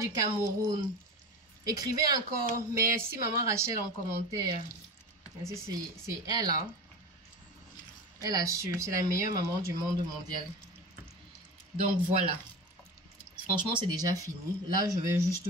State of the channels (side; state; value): both; normal; correlation 0.29